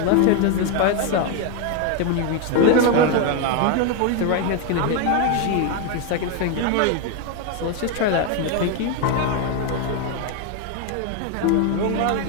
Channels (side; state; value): both; different; correlation 0.01